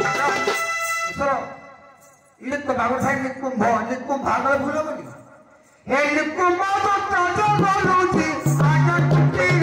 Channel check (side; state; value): both; identical; correlation 1.00